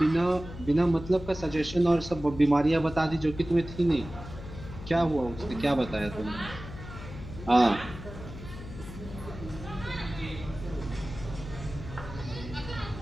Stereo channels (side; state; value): left; noise; hum, 12 dB below the sound